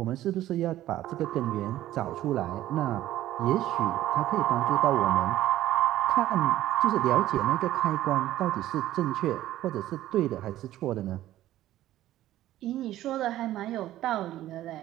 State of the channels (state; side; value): quieter; left; 14.0 dB